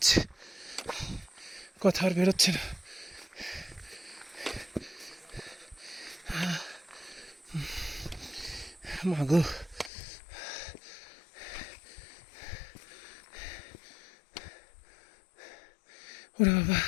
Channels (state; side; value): drops out; right; at 9.9 s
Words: কথা আর বেরোচ্ছে না। মাগো, ওরে বাবা।